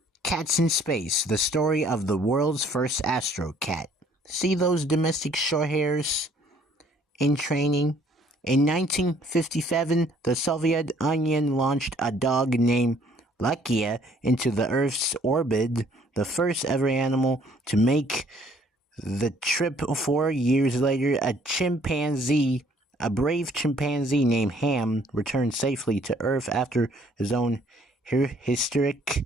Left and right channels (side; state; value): both; normal; correlation 0.61